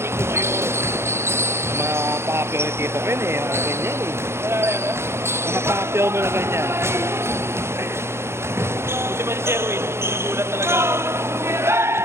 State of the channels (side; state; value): left; late; 0.12 ms